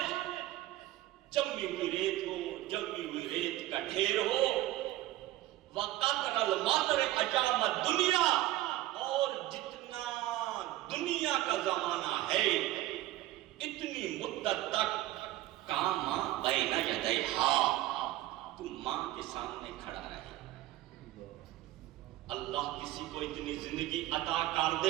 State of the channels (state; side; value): quieter; left; 15.6 dB